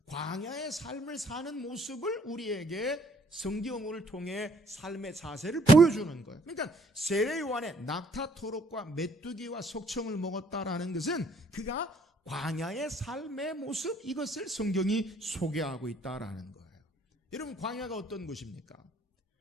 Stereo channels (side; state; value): both; normal; correlation 0.62